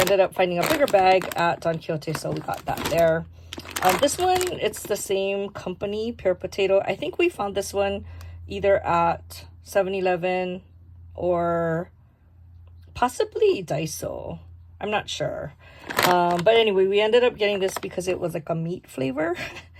up finding a bigger bag at Don Quixote, so we got that there. This one, it's the same company, Pure Potato. I think we found this one either at 7-Eleven or possibly Daiso. I'm not sure. But anyway, we ended up getting this because it was like a meat flavor.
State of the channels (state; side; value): identical; both; correlation 1.00